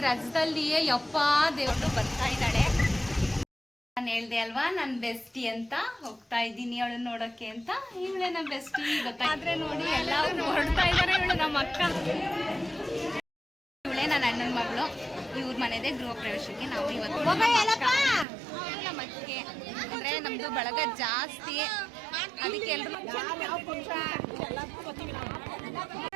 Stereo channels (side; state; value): left; drops out; at 18.2 s